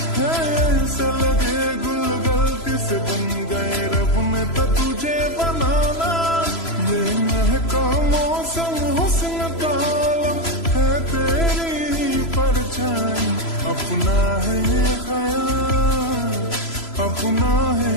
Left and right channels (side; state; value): right; late; 3.0 ms